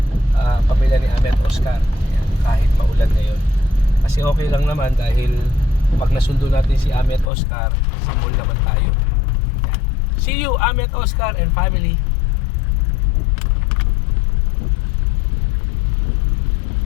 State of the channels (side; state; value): right; drops out; at 7.3 s